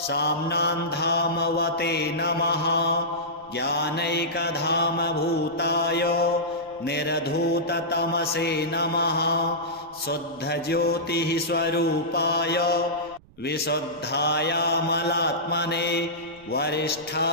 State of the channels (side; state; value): right; noise; rumble, 26 dB below the sound